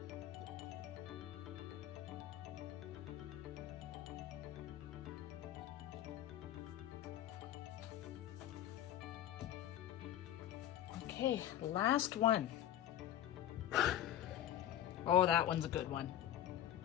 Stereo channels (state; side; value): quieter; right; 11.9 dB